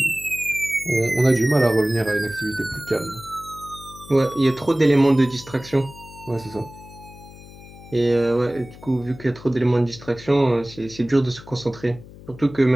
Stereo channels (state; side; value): noise; left; hum, 18 dB below the sound